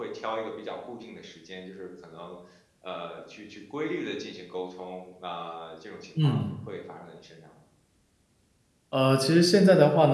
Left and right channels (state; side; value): identical; both; correlation 1.00